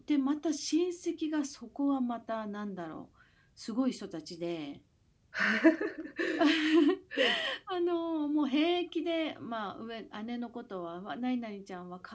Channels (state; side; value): identical; both; correlation 1.00